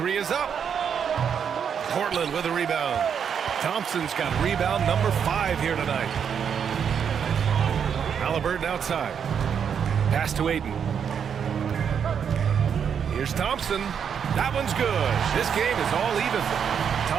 is up. Portland with a rebound. Thompson's got rebound number 5 here tonight. Halliburton outside. Pass to Aiden. Here's Thompson. That one's good. This game is all even.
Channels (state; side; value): quieter; left; 7.5 dB